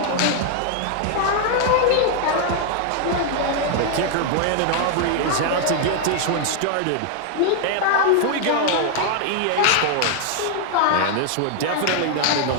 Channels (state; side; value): different; both; correlation 0.00